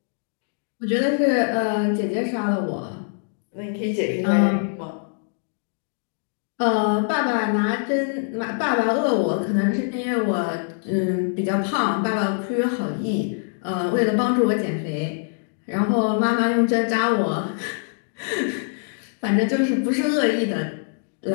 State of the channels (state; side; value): silent; right; digital silence